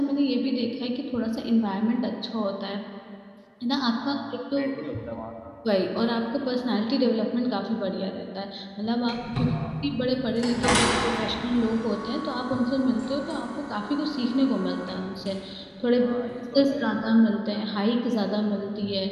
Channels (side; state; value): both; identical; correlation 1.00